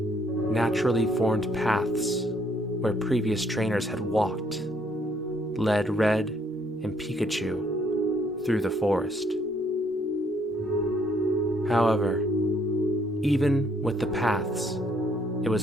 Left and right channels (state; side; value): normal; both; correlation 0.68